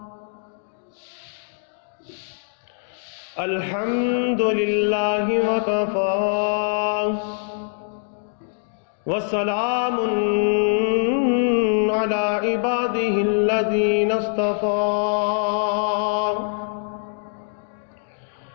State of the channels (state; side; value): silent; right; digital silence